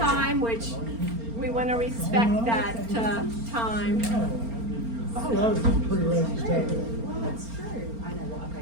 which we want to respect that time. I was pretty ready to stay.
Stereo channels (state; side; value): late; left; 4.3 ms